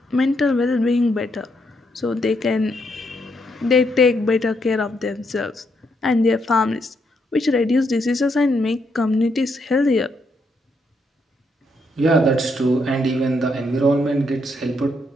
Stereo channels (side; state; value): both; normal; correlation 0.77